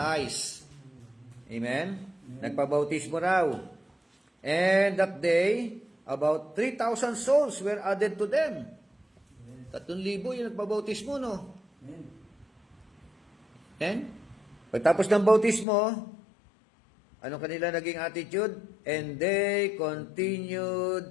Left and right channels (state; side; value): drops out; right; at 15.7 s